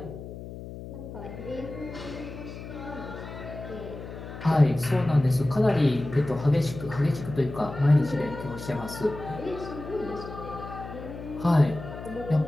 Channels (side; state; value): left; noise; hum, 11 dB below the sound